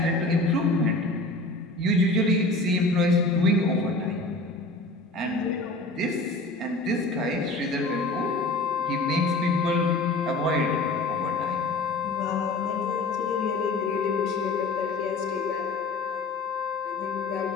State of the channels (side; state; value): right; quieter; 3.1 dB